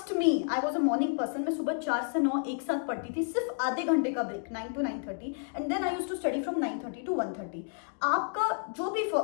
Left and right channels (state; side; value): silent; right; digital silence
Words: me I was a morning person, मैं सुबह 4 से 9 एक साथ पढ़ती थी, सिर्फ आधे घंटे का break 9 to 9:30, and then I used to study from 9:30 to 1:30। आपका जो भी